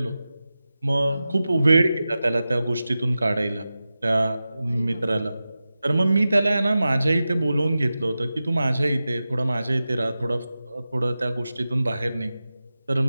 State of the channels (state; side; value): inverted; both; correlation -0.94